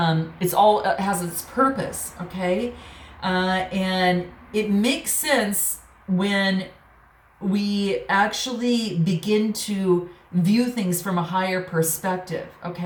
all has its purpose, okay? And it makes sense when we actually begin to view things from a higher perspective,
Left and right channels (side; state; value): both; identical; correlation 1.00